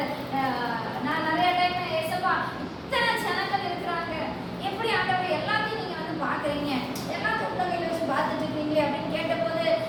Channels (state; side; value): identical; both; correlation 1.00